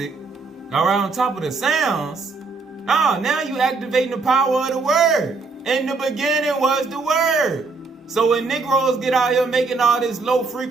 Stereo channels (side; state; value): left; quieter; 4.1 dB